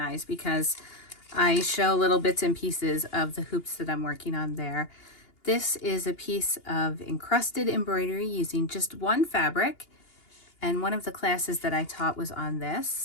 because I show little bits and pieces of the hoops that I'm working on there. This is a piece of encrusted embroidery using just one fabric, and one of the classes that I taught was on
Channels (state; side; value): late; right; 2.8 ms